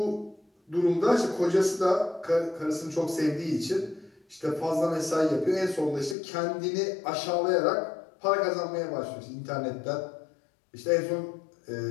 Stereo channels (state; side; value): drops out; right; at 6.2 s